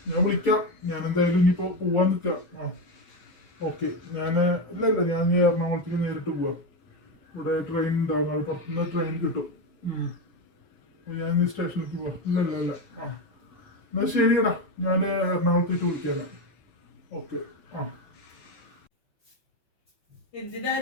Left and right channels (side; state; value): right; late; 5.6 ms